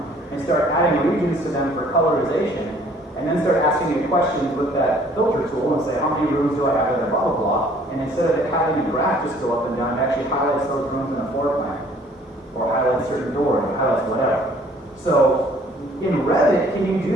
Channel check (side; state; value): both; normal; correlation 0.57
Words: and start adding regions to them for colorization, and then start asking it questions with that filter tool and say, how many rooms do I have that are blah, blah, blah, and instead of it having a graph just go up and down, it actually highlights those rooms in a floor plan, or highlights certain doors, or highlights whatever. So, in Revit, can you